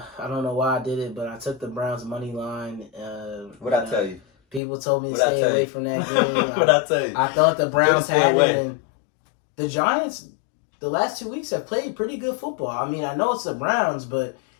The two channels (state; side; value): drops out; right; at 4.6 s